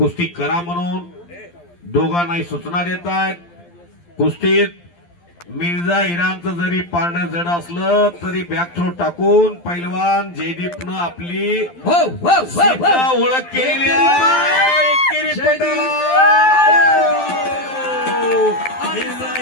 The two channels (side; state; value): right; late; 12 ms